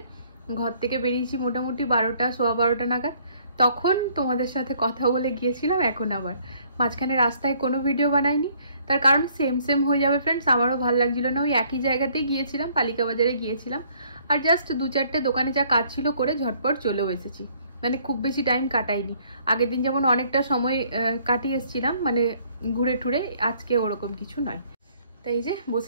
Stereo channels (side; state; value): both; inverted; correlation -0.63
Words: ঘর থেকে বেরিয়েছি মোটামুটি 12টা, সোয়া 12টা নাগাদ, তখন তোমাদের সাথে কথা বলে গিয়েছিলাম। এখন আবার মাঝখানে রাস্তায় কোনো ভিডিও বানাইনি, তার কারণ সেম হয়ে যাবে ফ্রেন্ডস, আমারও ভালো লাগছিল না। ওই একই জায়গাতেই গিয়েছিলাম, পালিকা বাজারে গিয়েছিলাম, আর জাস্ট 2-4টে দোকানে যা কাজ ছিল করে ঝটপট চলেও এসেছি, মানে খুব বেশি টাইম কাটাইনি। আগের দিন যেমন অনেকটা সময় কাটিয়ে এসেছিলাম মানে ঘুরে টুরে, আজকে ওরকম কিছু নয়। তাই যে